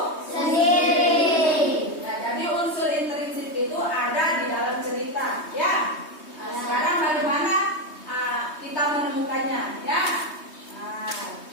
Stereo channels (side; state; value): right; late; 3.2 ms